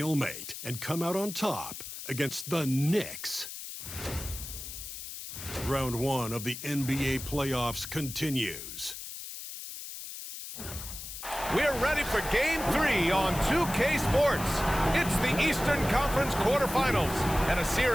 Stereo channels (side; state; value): left; noise; hiss, 10 dB below the sound